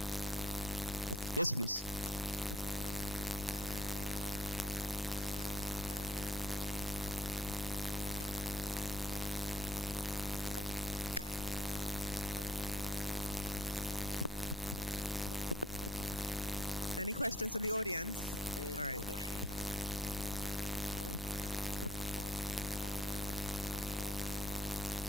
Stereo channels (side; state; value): both; normal; correlation 0.58